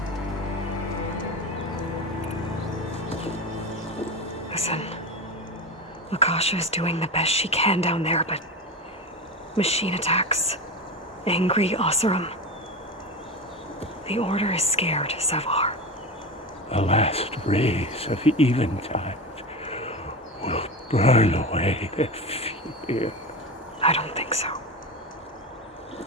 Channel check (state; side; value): normal; both; correlation 0.23